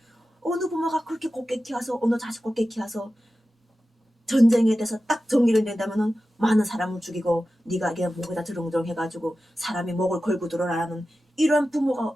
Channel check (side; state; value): both; normal; correlation 0.93